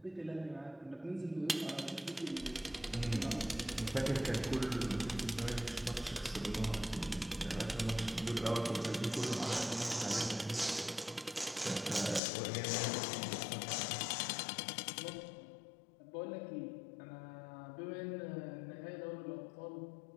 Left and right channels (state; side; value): drops out; right; at 12.2 s